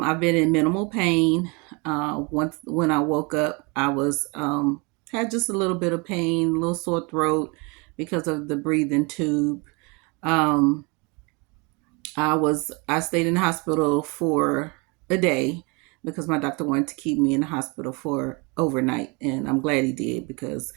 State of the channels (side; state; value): left; quieter; 29.8 dB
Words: been in minimal pain. Once when I woke up, I was had just a little bit of pain, a little sore throat because of the breathing tube. Um, I stayed in the hospital for a day because my doctor wanted to keep me in the hospital for overnight, and I'm glad he did because